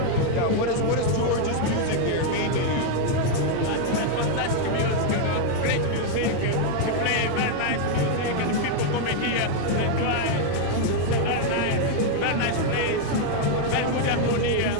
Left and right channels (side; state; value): both; different; correlation 0.00